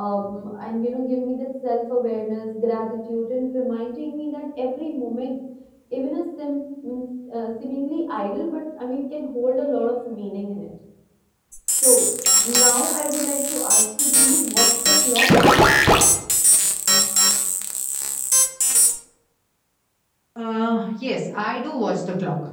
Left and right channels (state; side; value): identical; both; correlation 1.00